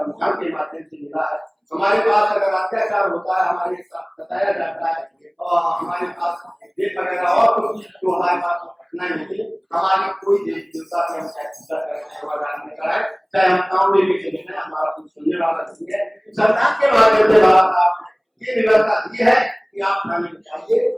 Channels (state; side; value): identical; both; correlation 1.00